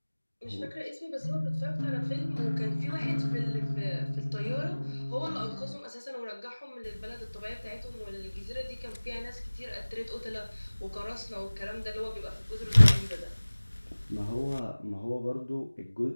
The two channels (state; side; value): inverted; both; correlation -1.00